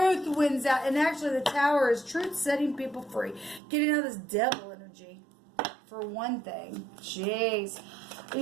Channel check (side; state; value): left; drops out; at 3.6 s